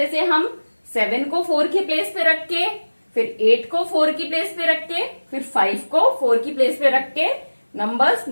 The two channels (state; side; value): inverted; both; correlation -1.00